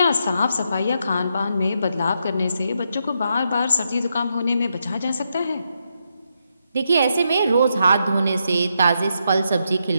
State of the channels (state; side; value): inverted; both; correlation -0.81